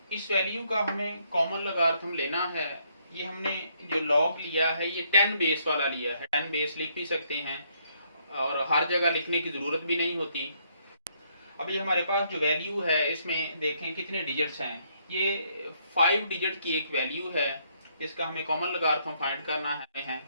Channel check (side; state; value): both; inverted; correlation -0.72